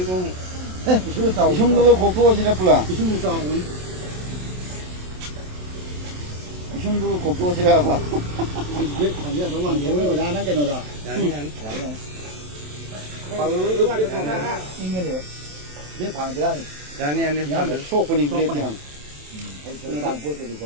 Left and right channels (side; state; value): left; late; 27 ms